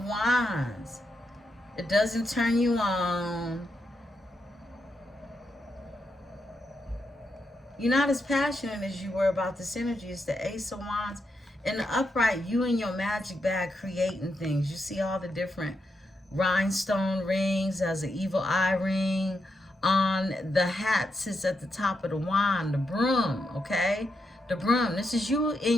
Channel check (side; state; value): both; normal; correlation 0.84